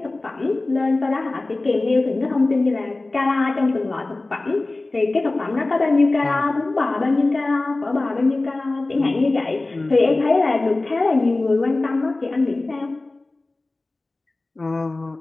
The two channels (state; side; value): quieter; right; 3.1 dB